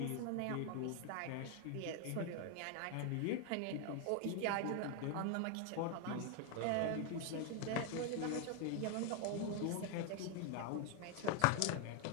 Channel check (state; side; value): different; both; correlation 0.01